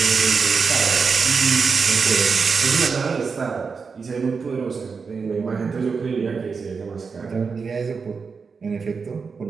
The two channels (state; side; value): quieter; left; 5.2 dB